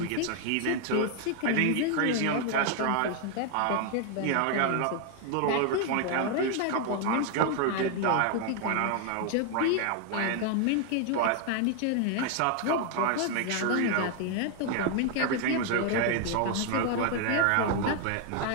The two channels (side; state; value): both; different; correlation 0.00